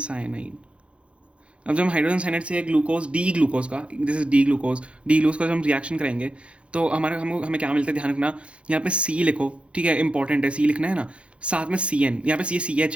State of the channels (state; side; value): late; left; 0.060 ms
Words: अब जब हम हाइड्रोजन साइनाइड से ग्लूकोज, डी ग्लूकोज का, दिस इज डी ग्लूकोज का जब हम रिएक्शन करेंगे, तो हमें क्या मिलता है, ध्यान रखना। यहाँ पे C लिखो, ठीक है, इंपॉर्टेंट है, C लिखना है ना। साथ में CN, यहाँ पे CH